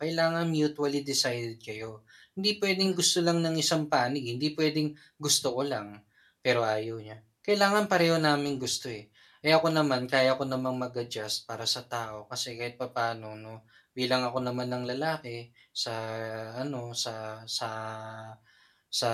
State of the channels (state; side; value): identical; both; correlation 1.00